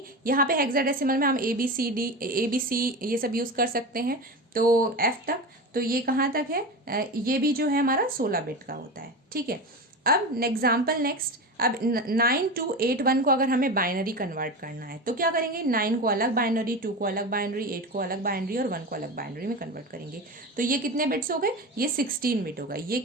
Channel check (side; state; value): both; normal; correlation 0.24